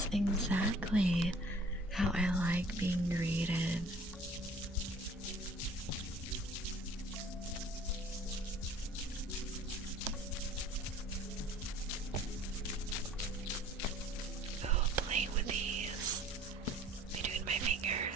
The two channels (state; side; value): normal; both; correlation 0.51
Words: exactly how I like being greeted. Oh, play with these between my